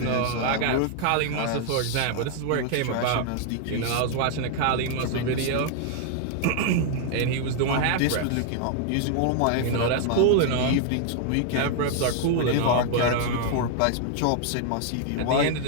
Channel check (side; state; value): both; different; correlation 0.00